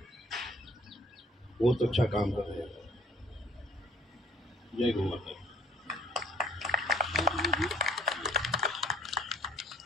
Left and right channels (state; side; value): normal; both; correlation 0.56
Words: बहुत अच्छा काम कर रहे हैं। जय गौ माता।